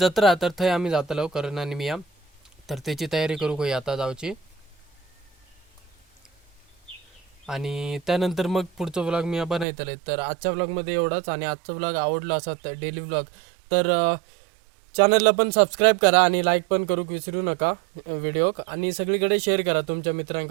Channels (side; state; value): left; drops out; at 9.7 s